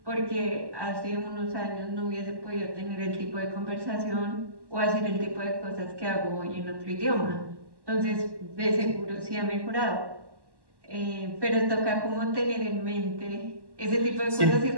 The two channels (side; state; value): left; late; 1.1 ms